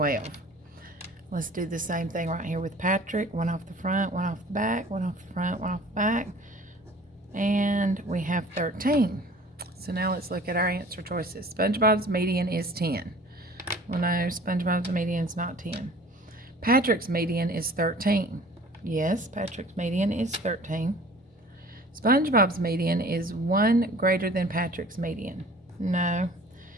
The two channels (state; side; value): normal; both; correlation 0.48